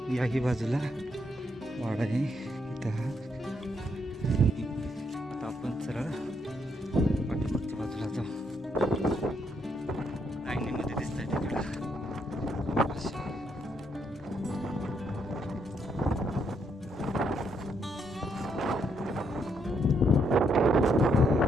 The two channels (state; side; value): normal; both; correlation 0.75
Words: याही बाजूला वाडा आहे इथं. आता आपण सरळ पाठीमागच्या बाजूला जाऊ. लाईनीमध्ये दिसत आहे तिकडं.